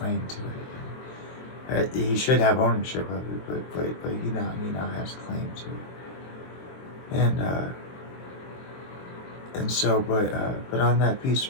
to it. He should have ownership of it, but he now has claim to it. And so, but on that piece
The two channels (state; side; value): late; right; 23 ms